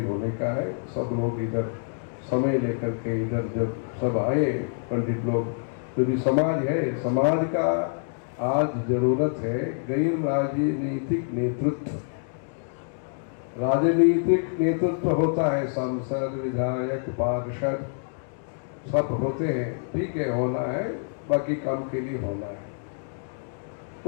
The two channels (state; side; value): silent; right; digital silence